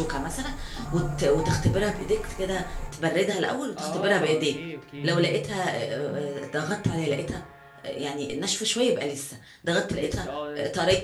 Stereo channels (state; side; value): identical; both; correlation 1.00